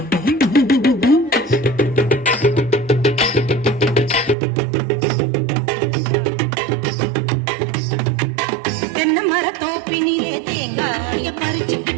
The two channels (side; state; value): left; drops out; at 4.4 s